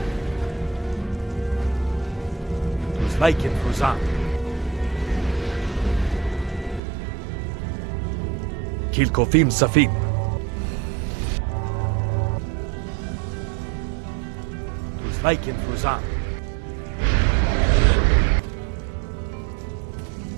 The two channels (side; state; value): left; drops out; at 6.8 s